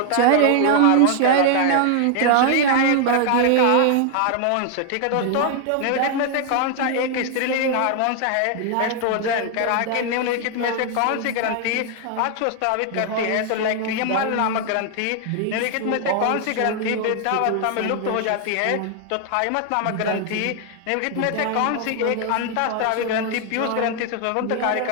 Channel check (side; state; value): both; different; correlation 0.00